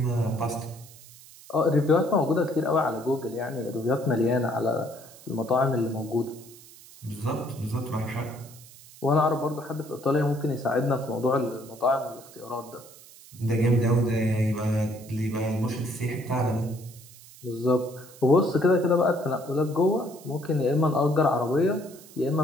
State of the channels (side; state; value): right; noise; hiss, 21 dB below the sound